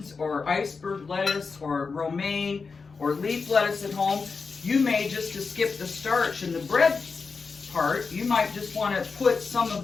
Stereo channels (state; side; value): quieter; right; 4.8 dB